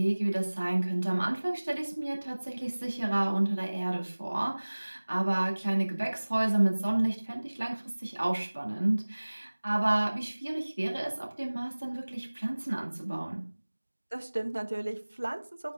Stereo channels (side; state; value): both; inverted; correlation -1.00